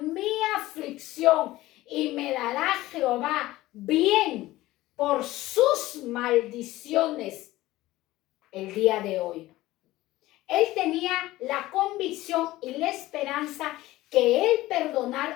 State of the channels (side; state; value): right; quieter; 17.2 dB